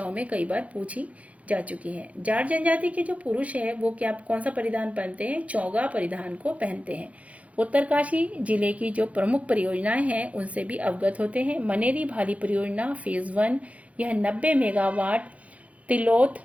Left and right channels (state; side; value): late; left; 0.066 ms